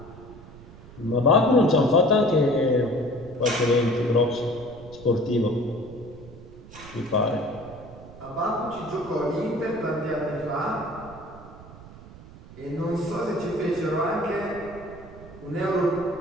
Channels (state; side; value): noise; right; rumble, 18 dB below the sound